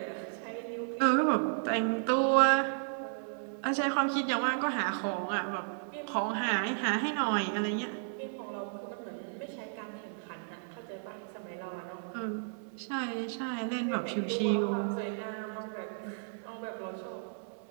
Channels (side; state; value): left; silent; 55 dB below the other